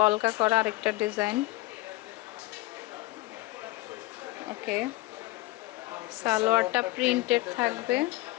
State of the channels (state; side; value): quieter; right; 20.2 dB